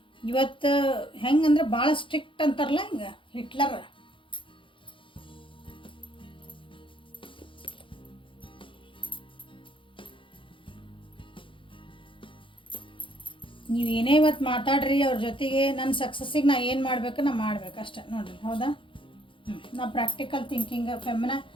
ಇವತ್ತು ಹೆಂಗಂದ್ರೆ ಭಾಳ ಸ್ಟ್ರಿಕ್ಟ್ ಅಂತಾರಲ್ಲ, ಹಿಂಗೆ ಹಿಟ್ಲರ್. ನೀವೇನೇ ಇವತ್ತು ಮಾತಾಡ್ರಿ ಅವ್ರ ಜೊತೆಗೆ, ನನ್ನ ಸಕ್ಸಸ್ಸಿಗೆ ನಾ ಏನು ಮಾಡಬೇಕು ನಾ ಮಾಡ್ಬೇಕು ಅಷ್ಟೆ ನೋಡಿರಿ. ಹೌದಾ? ನಾ ಪ್ರಾಕ್ಟಿಕಲ್ ಥಿಂಕಿಂಗ್ ಫೆಮಿನ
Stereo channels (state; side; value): late; right; 0.25 ms